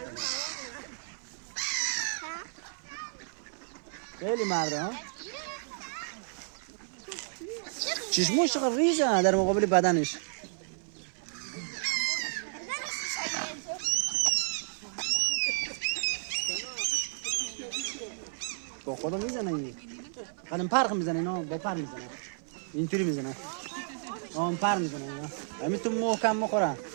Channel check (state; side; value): silent; left; 56 dB below the other